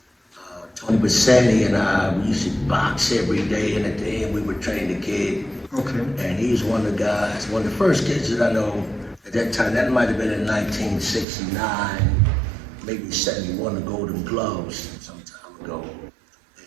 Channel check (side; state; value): left; drops out; at 11.2 s